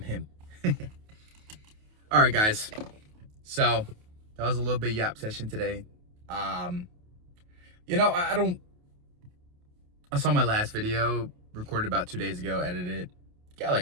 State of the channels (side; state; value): left; late; 28 ms